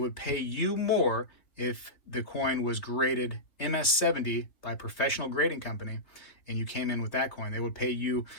pay you more if the coin was graded MS70 by a professional grading company and you came in with that coin. They would pay you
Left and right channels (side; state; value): right; late; 3.2 ms